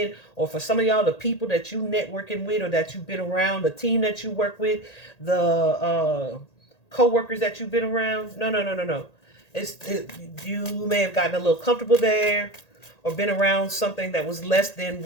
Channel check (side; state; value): right; late; 1.8 ms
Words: or for some of y'all, the people that you networking with or that you've been around, the team that you work with, the co-workers that you've been around. No. You may have gotten a little comfortable there or been around something that was less than